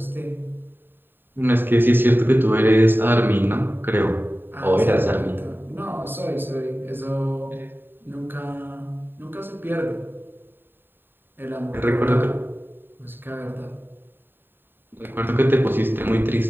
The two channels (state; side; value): late; left; 0.096 ms